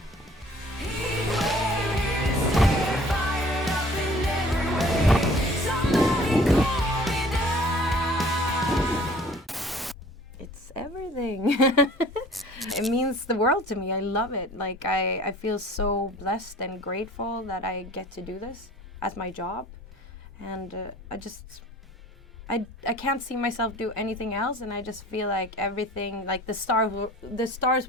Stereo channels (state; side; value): normal; both; correlation 0.50